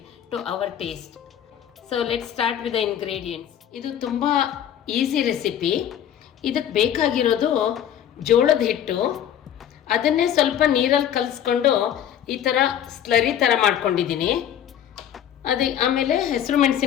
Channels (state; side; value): quieter; right; 10.1 dB